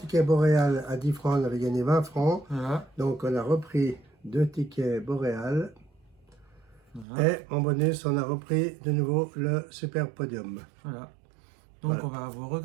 boréal à 10 francs, on avait gagné 20 francs. Voilà, Donc on a repris 2 tickets boréal. voilà, Et en bonus, on a repris de nouveau le super podium. voilà. Donc Voilà, on va vous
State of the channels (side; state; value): left; drops out; at 7.1 s